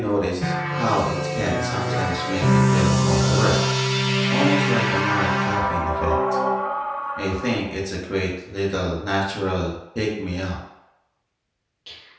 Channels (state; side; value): identical; both; correlation 1.00